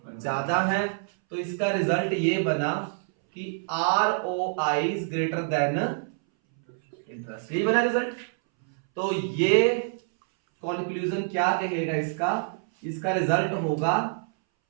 ज्यादा है। तो इसका रिजल्ट ये बना कि ROI is greater than interest, यही बना रिजल्ट। तो ये कंक्लूजन क्या कहेगा इसका? इसका रिजल्ट होगा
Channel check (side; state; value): left; silent; 61 dB below the other